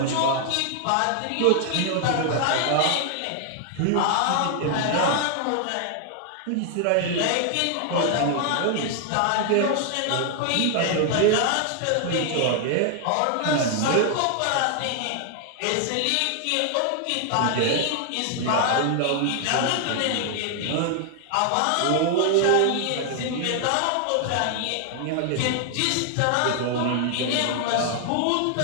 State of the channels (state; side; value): different; both; correlation 0.00